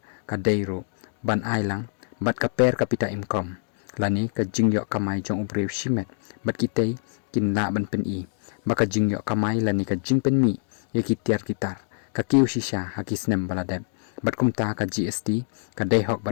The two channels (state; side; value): silent; right; digital silence